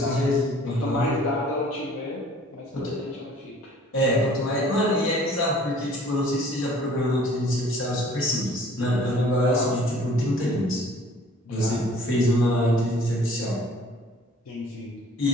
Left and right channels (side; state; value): both; normal; correlation 0.53